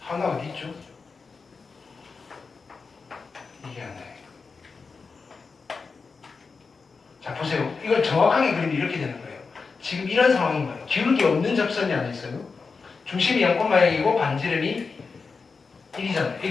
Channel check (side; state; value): right; quieter; 4.7 dB